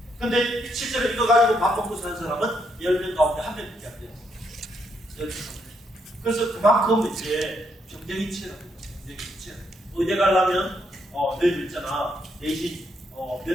근데 실제로 이거 가지고 밥 먹고 사는 사람은 10명 가운데 1명밖에 안 돼요. 10명. 그래서 그만큼 이제 경쟁이 치열합니다. 경쟁이 치열합니다. 의대 가려면 너희들 있잖아. 내신 몇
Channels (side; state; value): both; normal; correlation 0.76